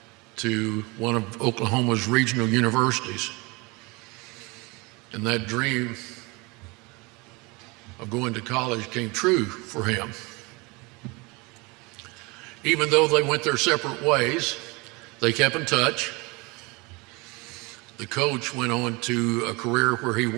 to one of Oklahoma's regional universities. And that dream of going to college came true for him. Even though they went their separate ways, they kept in touch. The coach went on to a career where he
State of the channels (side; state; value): left; quieter; 26.4 dB